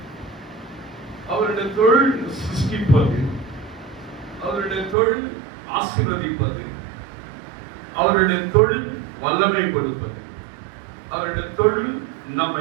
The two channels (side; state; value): left; drops out; at 5.0 s